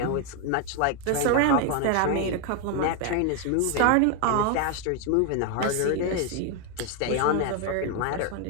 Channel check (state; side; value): different; both; correlation 0.01